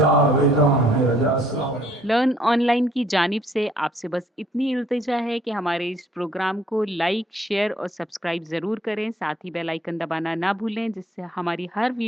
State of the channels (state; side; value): normal; both; correlation 0.62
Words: ہے رضا. السلام علیکم. لرن آن لائن کی جانب سے آپ سے بس اتنی التجا ہے کہ ہمارے اس پروگرام کو لائک، شیئر اور سبسکرائب ضرور کریں. ساتھ ہی بیل آئیکن دبانا نہ بھولیں جس سے ہماری ہر